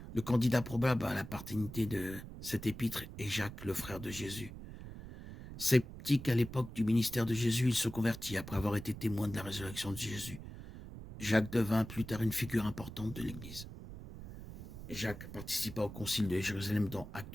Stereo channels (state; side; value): noise; right; rumble, 12 dB below the sound